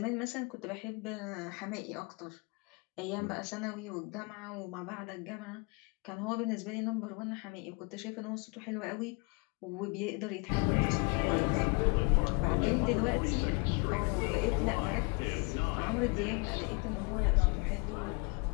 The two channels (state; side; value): quieter; right; 32.2 dB